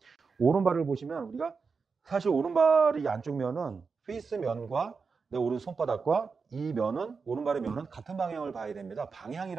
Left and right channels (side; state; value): left; quieter; 5.0 dB